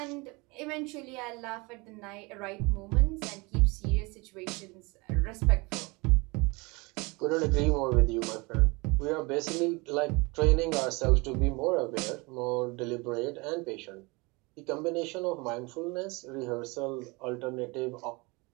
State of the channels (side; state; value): left; quieter; 26.3 dB